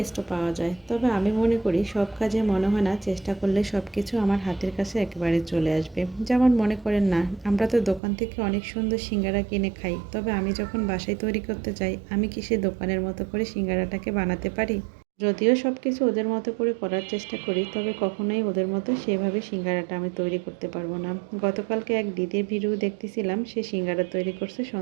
পাওয়া যায়, তবে আমি মনে করি সব কাজে মনে হয় না চেষ্টা করলে সব কিছু আমার হাতের কাছে একেবারে চলে আসবে। যেমন মনে করেন না, আমরা তো দোকান থেকে অনেক সুন্দর সিঙ্গারা কিনে খাই, তবে আমি যখন বাসায় তৈরি করতে চাই, আমি কি সে দোকানের মতো করে সিঙ্গারাটাকে বানাতে পারি? যদিও সব কিছু ওদের মতো করে করার চেষ্টা করি, তবে কখনোই ওদের মতো সেভাবে সিঙ্গারাটা আমি তৈরি করতে পারবো না। গতকালকে এক দিদির ভিডিও দেখতেছিলাম, সে সিঙ্গারা তৈরি করছে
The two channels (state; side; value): drops out; left; at 8.0 s